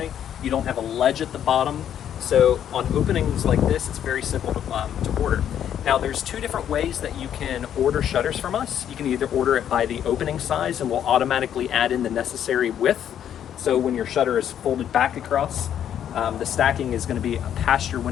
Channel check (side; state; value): right; quieter; 9.8 dB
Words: You don't have a ledge at the bottom. So on openings like this, it's very simple to order. Now, there's two different ways that you can order shutters from us. You can either order it by the opening size and we'll automatically add in the necessary width. So when your shutter is folded back across, the stacking is going to be past your